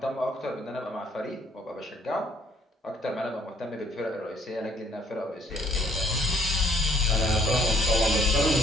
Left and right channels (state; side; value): normal; both; correlation 0.63